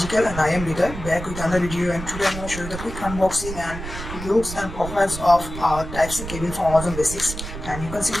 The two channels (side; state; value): right; noise; rumble, 9 dB below the sound